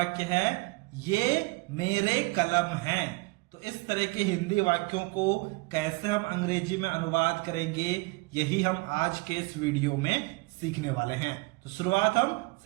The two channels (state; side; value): quieter; left; 25.5 dB